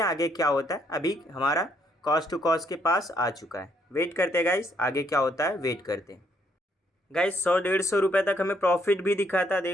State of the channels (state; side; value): normal; both; correlation 0.71